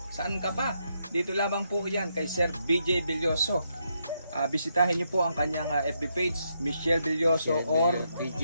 Saan ka pa? Dito lamang po yan kay Sir BJ Villoso. Bisitahin niyo po ang kanyang FB page, Michelle Villoso or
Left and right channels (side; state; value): both; inverted; correlation -0.79